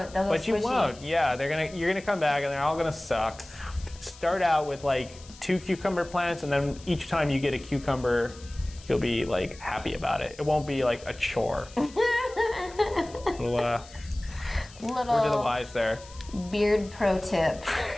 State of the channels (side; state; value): left; noise; hiss, 21 dB below the sound